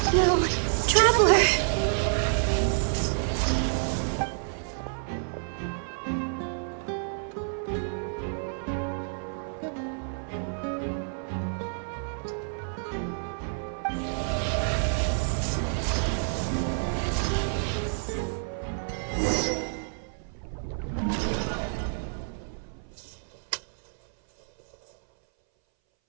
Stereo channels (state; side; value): silent; left; 59 dB below the other